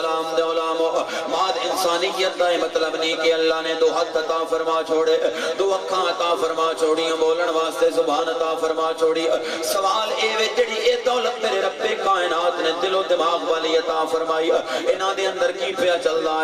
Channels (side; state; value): both; identical; correlation 1.00